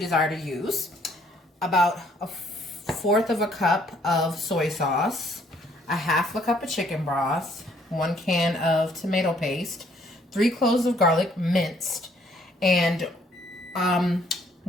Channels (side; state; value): both; normal; correlation 0.65